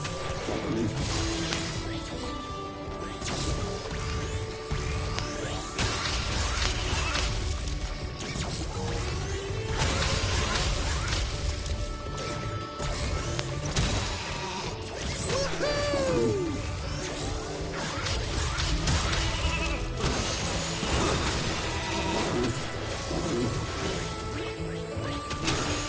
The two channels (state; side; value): identical; both; correlation 1.00